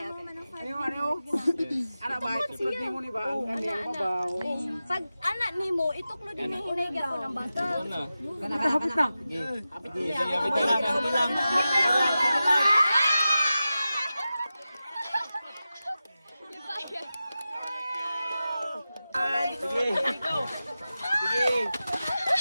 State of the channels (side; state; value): both; inverted; correlation -0.93